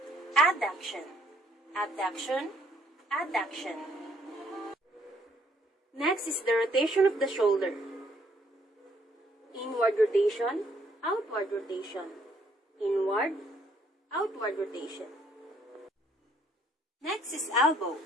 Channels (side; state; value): both; normal; correlation 0.67